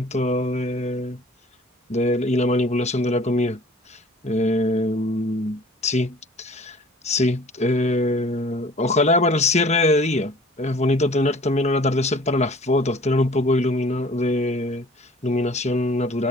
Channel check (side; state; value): both; normal; correlation 0.50